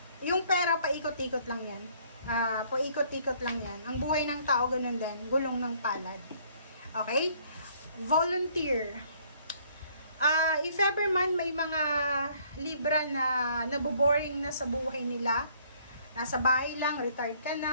Yung pera, paikot-ikot lang yan. Paikot-ikot lang yan. Ang buhay ng tao, ganun din. Gulong ng palad. Okay? Volunteer. If ever man may mga Libra na naboboring na sa buhay nila, nasa bahay lang, retired ka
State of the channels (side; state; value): both; inverted; correlation -0.62